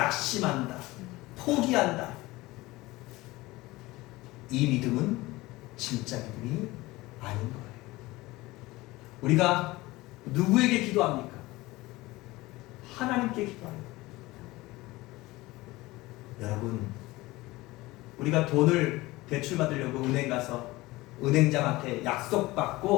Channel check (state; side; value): quieter; right; 20.0 dB